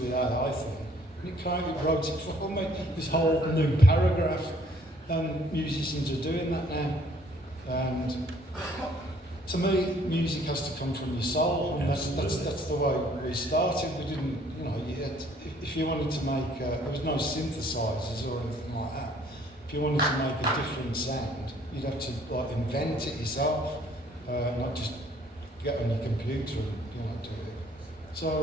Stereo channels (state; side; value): normal; both; correlation 0.61